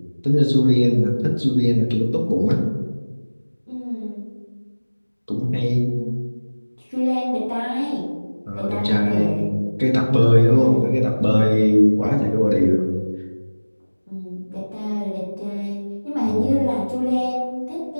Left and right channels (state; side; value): inverted; both; correlation -1.00